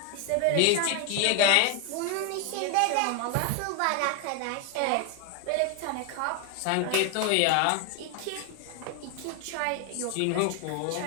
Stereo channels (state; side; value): different; both; correlation 0.01